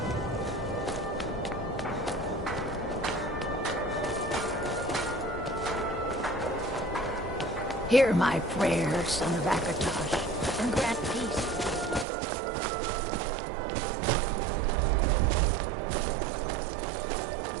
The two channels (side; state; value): left; drops out; at 12.1 s